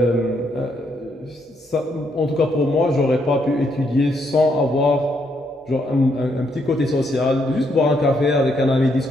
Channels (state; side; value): normal; both; correlation 0.75